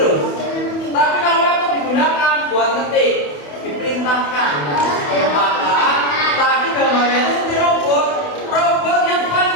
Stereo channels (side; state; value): right; late; 28 ms